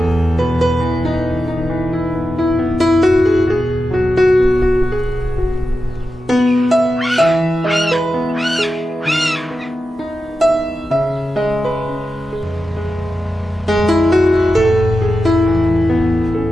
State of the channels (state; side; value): normal; both; correlation 0.91